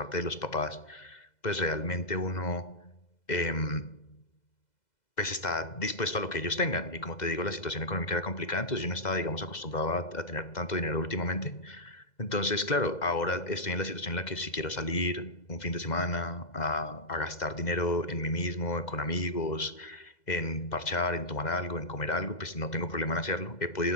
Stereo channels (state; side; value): late; right; 2.0 ms